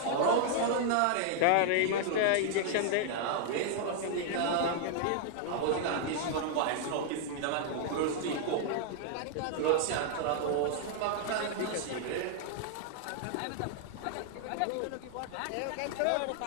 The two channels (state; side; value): different; both; correlation -0.01